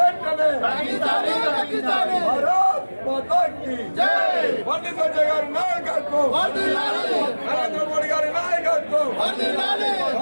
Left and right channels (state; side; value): inverted; both; correlation -1.00